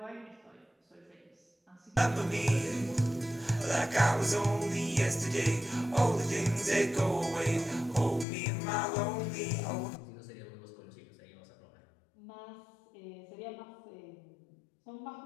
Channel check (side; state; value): right; drops out; at 8.2 s